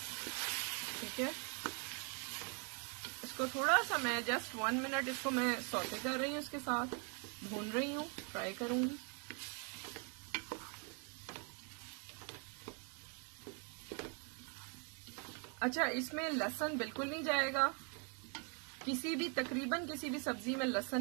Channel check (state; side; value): quieter; left; 37.6 dB